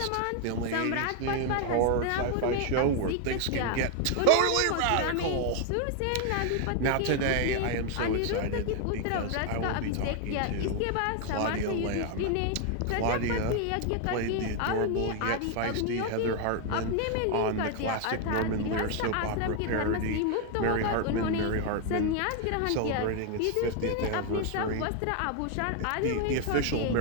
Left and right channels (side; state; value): both; different; correlation 0.00